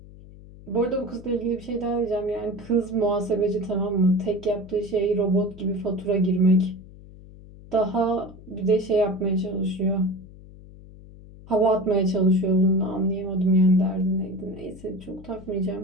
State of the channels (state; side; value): noise; left; hum, 19 dB below the sound